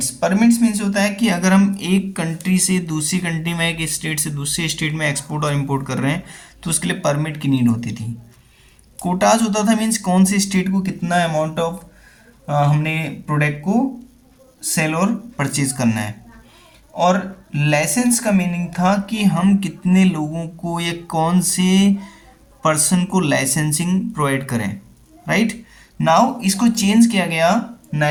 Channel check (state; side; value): identical; both; correlation 1.00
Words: मीन्स होता है कि अगर हम एक कंट्री से दूसरी कंट्री में, एक स्टेट से दूसरे स्टेट में एक्सपोर्ट और इंपोर्ट कर रहे हैं तो उसके लिए परमिट की नीड होती थी। कोटाज होता था मीन्स कौन से स्टेट को कितना अमाउंट ऑफ हमने प्रोडक्ट को सेल और परचेज करना है। और लाइसेंस का मीनिंग था कि हम कितने लोगों को या कौन से पर्सन को लाइसेंसिंग प्रोवाइड करें। राइट नाउ इसको चेंज किया गया